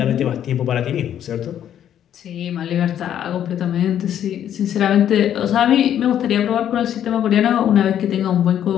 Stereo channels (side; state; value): right; quieter; 10.2 dB